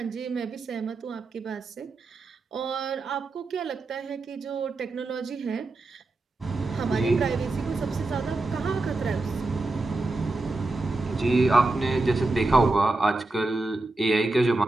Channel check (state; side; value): quieter; left; 3.1 dB